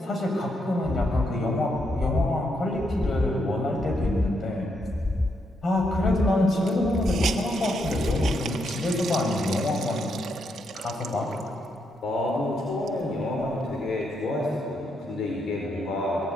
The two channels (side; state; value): both; normal; correlation 0.79